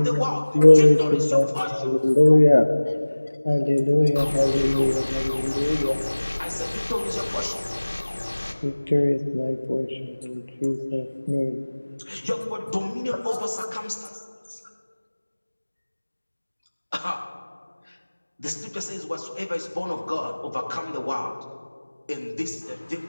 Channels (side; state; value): both; inverted; correlation -1.00